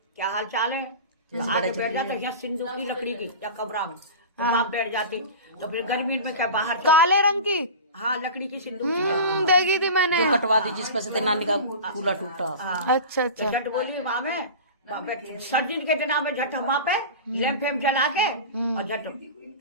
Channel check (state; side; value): inverted; both; correlation -0.32